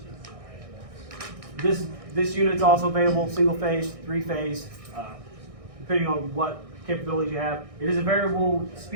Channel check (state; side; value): late; left; 1.6 ms